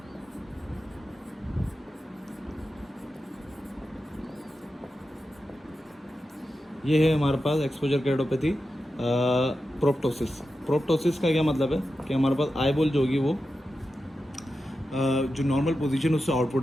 ये है हमारे पास एक्सपोजर कैरेटोपैथी। प्रोप्टोसिस। प्रोप्टोसिस का क्या मतलब है कि हमारे पास आईबॉल जो होगी वो जो नॉर्मल पोजीशन उससे आउटपुट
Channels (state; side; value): normal; both; correlation 0.91